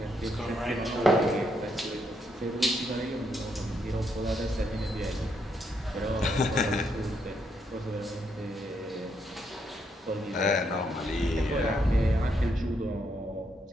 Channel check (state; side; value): normal; both; correlation 0.77